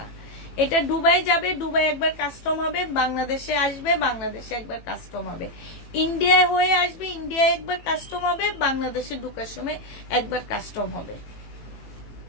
না। এটা দুবাই যাবে, দুবাই একবার কাস্টম হবে, বাংলাদেশে আসবে, বাংলাদেশে একবার কাস্টম হবে, ইন্ডিয়ায় হয়ে আসবে, ইন্ডিয়ায় একবার কাস্টম হবে, বাংলাদেশে ঢুকার সময় একবার কাস্টম হবে।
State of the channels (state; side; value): late; right; 18 ms